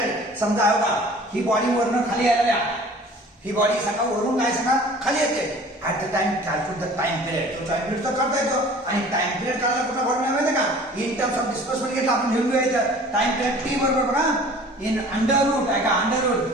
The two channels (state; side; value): normal; both; correlation 0.47